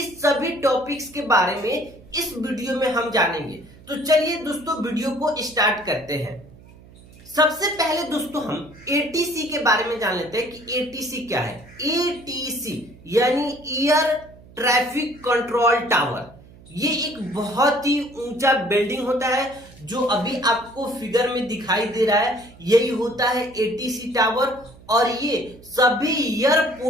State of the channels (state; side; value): noise; right; hum, 22 dB below the sound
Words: सभी टॉपिक्स के बारे में इस वीडियो में हम जानेंगे। तो चलिए दोस्तों वीडियो को स्टार्ट करते हैं। सबसे पहले दोस्तों हम एटीसी के बारे में जान लेते हैं कि एटीसी क्या है। एटीसी यानी एयर ट्रैफिक कंट्रोल टावर, ये एक बहुत ही ऊंचा बिल्डिंग होता है जो अभी आपको फिगर में दिखाई दे रहा है, यही होता है एटीसी टावर। और ये सभी